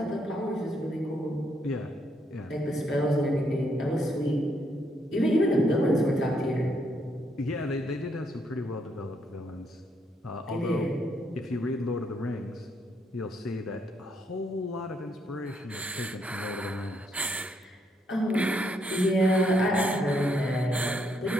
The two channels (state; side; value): normal; both; correlation 0.74